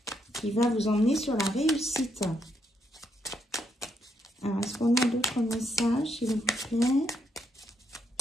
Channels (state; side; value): normal; both; correlation 0.76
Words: qui va vous emmener sur la réussite. Alors, est-ce qu'on a d'autres messages, s'il vous plaît?